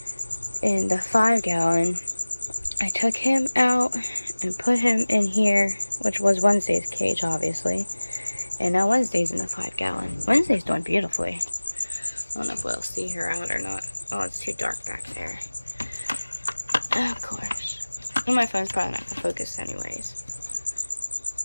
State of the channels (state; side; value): inverted; both; correlation -1.00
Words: in the 5-gallon, I took him out and put him in here, which was Wednesday's cage, obviously. And now Wednesday's in the 5-gallon. Wednesday's doing beautifully. I don't know if we'll see her out or not. Oh, it's too dark back there. Of course. And my phone's probably not going to focus anyways.